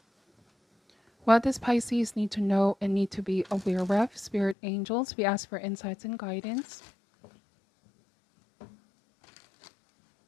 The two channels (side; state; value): right; drops out; at 4.5 s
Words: What does Pisces need to know and need to be aware of? Spirit angels, we ask for insights and guidance.